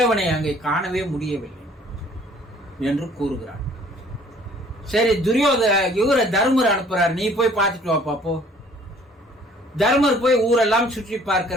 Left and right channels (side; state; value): both; normal; correlation 0.56